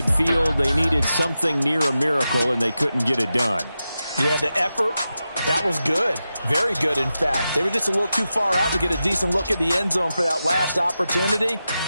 They needed something near a miracle, and they couldn't get it done. Yeah, the effort, that was good. Very good, in fact. They were just a little too far out to get a decent look at the end zone for that last opportunity.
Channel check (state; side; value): inverted; both; correlation -0.91